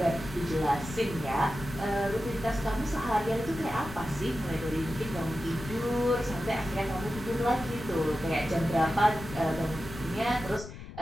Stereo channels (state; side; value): noise; left; rumble, 13 dB below the sound